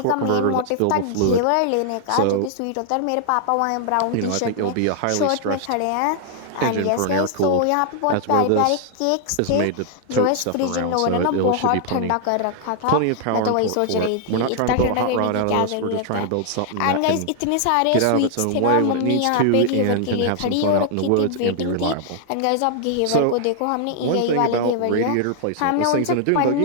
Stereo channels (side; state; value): both; different; correlation -0.01